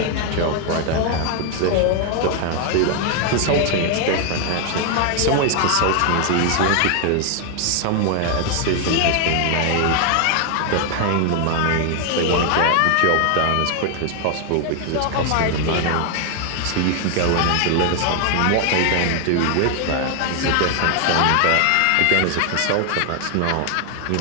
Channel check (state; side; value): different; both; correlation 0.00